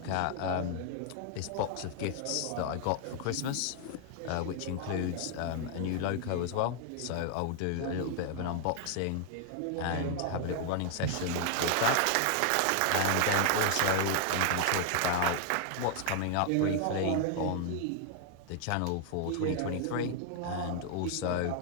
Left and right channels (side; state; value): both; different; correlation 0.00